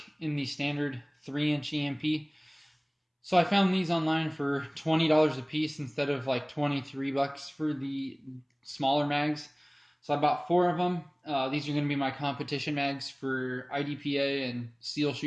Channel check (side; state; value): both; identical; correlation 1.00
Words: in the standard 3-inch EMP. So I found these online for $20 a piece instead of like $23 for the smaller mags. So I bought 4 of them. These are going to be my competition mags for IDPA and seal